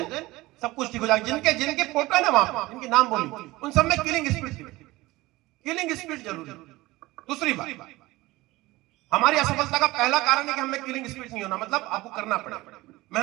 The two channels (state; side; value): quieter; left; 19.6 dB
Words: सब कुछ ठीक हो जाएगा। जिनके जिनके फोटो है ना वहां पर, जिनके नाम बोली, उन सब में किलिंग स्पिरिट, किलिंग स्पिरिट जरूरी। दूसरी बात, हमारी असफलता का पहला कारण है कि हमें किलिंग स्पिरिट नहीं होना। मतलब आपको करना पड़ेगा,